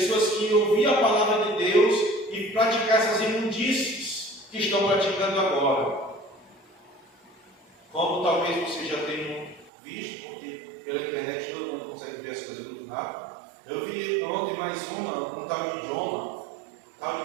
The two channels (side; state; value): left; drops out; at 9.7 s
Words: que iam ouvir a palavra de Deus e praticar essas imundícies que estão praticando agora. Como talvez vocês já tenham visto, porque pela internet todo mundo consegue ver as coisas muito rápido. Eu vi ontem mais um tal de Jonah, tal